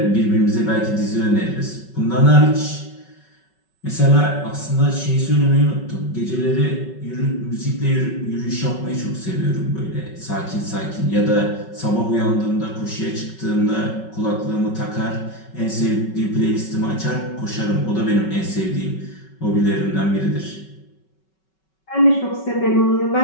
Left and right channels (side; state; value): right; late; 5.3 ms